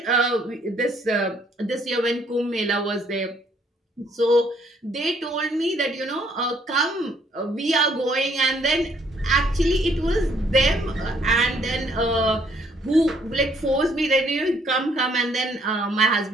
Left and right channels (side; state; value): both; normal; correlation 0.66